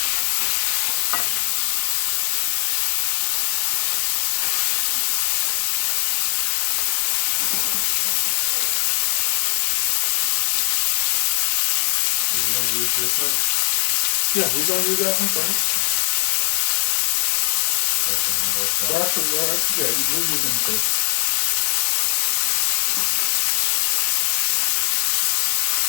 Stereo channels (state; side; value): silent; right; digital silence